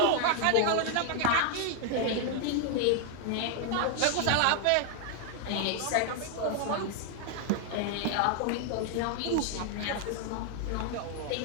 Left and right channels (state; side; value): different; both; correlation 0.00